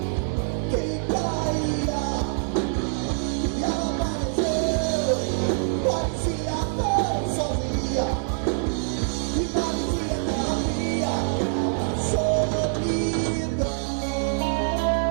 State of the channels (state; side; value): silent; left; digital silence